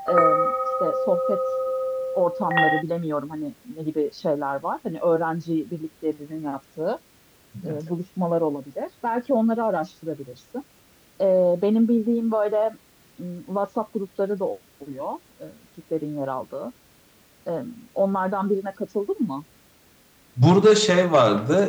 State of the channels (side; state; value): both; identical; correlation 1.00